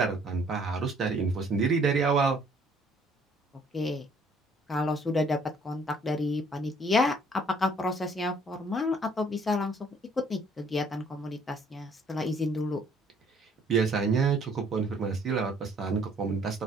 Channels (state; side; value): normal; both; correlation 0.60